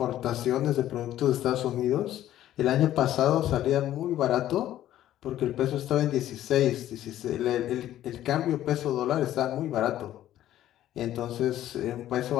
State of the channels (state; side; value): quieter; right; 12.8 dB